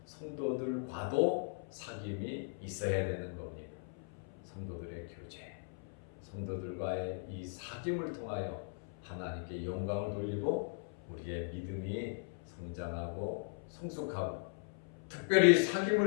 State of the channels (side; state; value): right; silent; 52 dB below the other